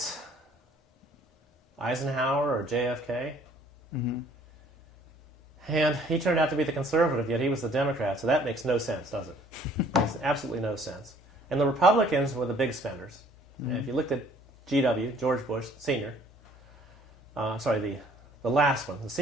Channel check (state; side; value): normal; both; correlation 0.57